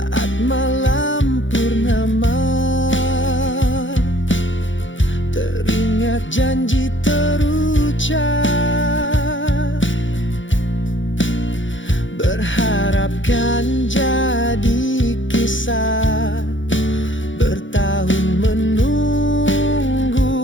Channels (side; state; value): right; late; 0.56 ms